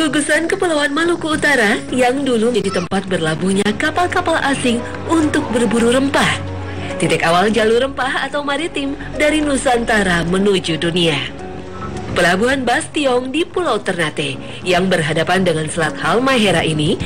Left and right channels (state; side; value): identical; both; correlation 1.00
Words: Kepulauan Maluku Utara yang dulu menjadi tempat berlabuhnya kapal-kapal asing untuk berburu rempah. Titik awal jalur rempah atau maritim dari Nusantara menuju dunia. Pelabuhan Bastiong di Pulau Ternate yang berhadapan dengan Selat Halmahera ini